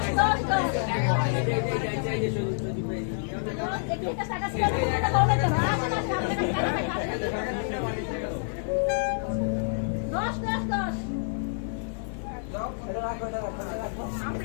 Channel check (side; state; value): right; silent; 59 dB below the other